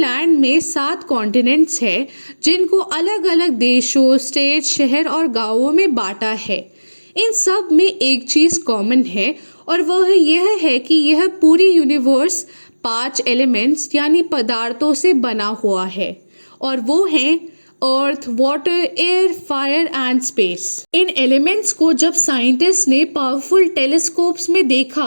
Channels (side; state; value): both; inverted; correlation -1.00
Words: में 7 कॉन्टिनेंट्स हैं, जिनको अलग अलग देशों, स्टेट, शहर और गांवों में बांटा है। इन सब में एक चीज़ कॉमन है और वह यह है कि यह पूरी यूनिवर्स 5 एलिमेंट्स यानी पदार्थों से बना हुआ है, और वो हैं earth, water, air, fire and space. इन एलिमेंट्स को जब साइंटिस्ट ने पावरफुल टेलीस्कोप्स में